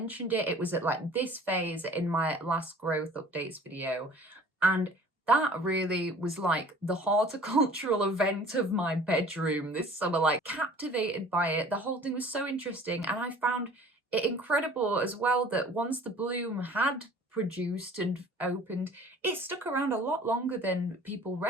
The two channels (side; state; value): both; normal; correlation 0.48